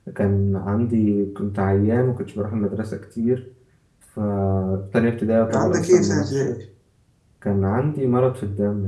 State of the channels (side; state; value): both; identical; correlation 1.00